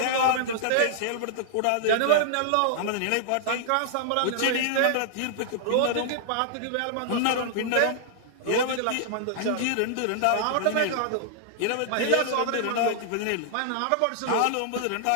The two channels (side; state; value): both; different; correlation -0.01